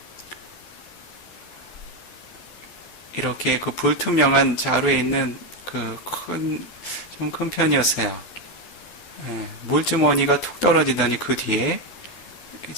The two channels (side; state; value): right; late; 11 ms